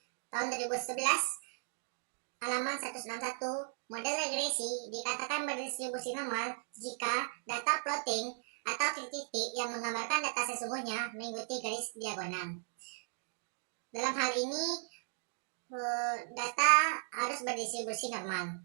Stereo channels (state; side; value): silent; left; digital silence